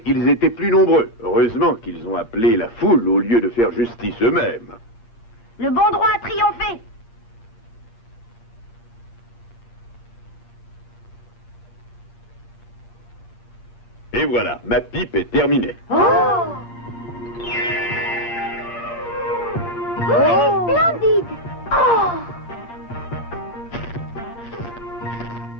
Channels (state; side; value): late; right; 8.7 ms